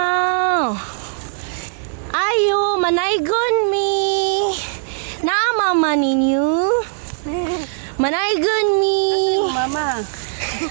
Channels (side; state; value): left; silent; digital silence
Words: Ayo, manaygon mi. Naamama ninyo. Manaygon mi. Mama.